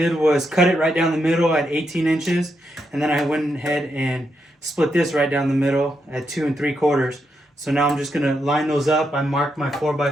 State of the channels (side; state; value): both; normal; correlation 0.82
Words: was cut it right down the middle at 18 inches, and then I went ahead and split this right down the middle at 2 3/4. So now I'm just gonna line those up. I marked my